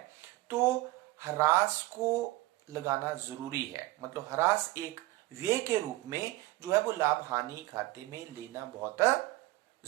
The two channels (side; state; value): left; quieter; 19.1 dB